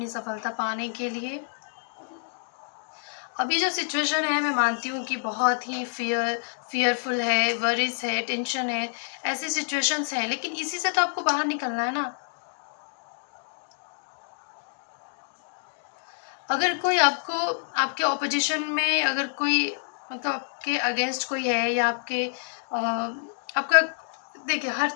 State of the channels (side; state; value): right; silent; digital silence